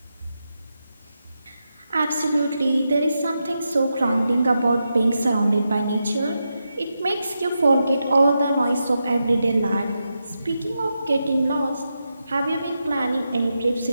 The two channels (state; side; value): inverted; both; correlation -0.87